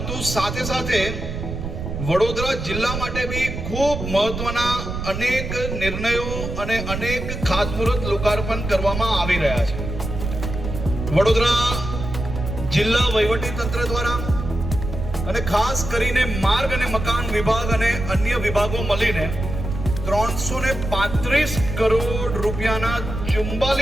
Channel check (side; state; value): right; noise; rumble, 6 dB below the sound